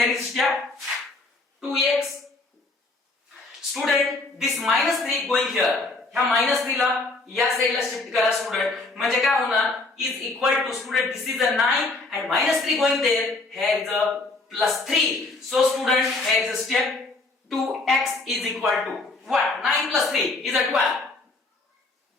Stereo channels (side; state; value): right; quieter; 3.3 dB